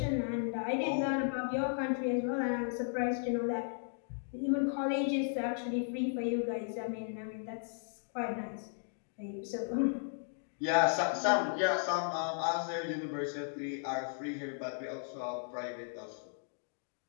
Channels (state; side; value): silent; right; digital silence